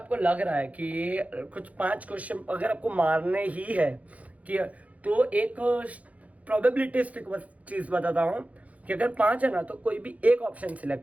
लग रहा है कि ये कुछ 5 क्वेश्चन अगर आपको मारने ही है कि, तो एक प्रोबेबिलिटिस्टिक चीज बताता हूँ कि अगर 5 है ना, तो कोई भी एक ऑप्शन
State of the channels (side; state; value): left; late; 0.069 ms